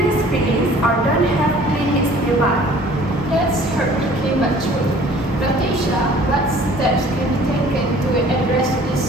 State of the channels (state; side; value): normal; both; correlation 0.51